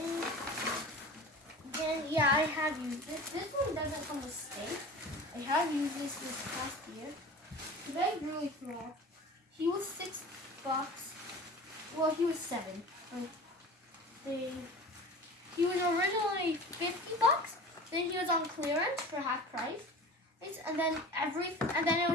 Then yeah, I have used this. This one doesn't come with stake. I have used this past year. The bag really small. He was $6. Well, he was 7. He was originally $50. Then he was on clearance for half price. And then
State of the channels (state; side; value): normal; both; correlation 0.37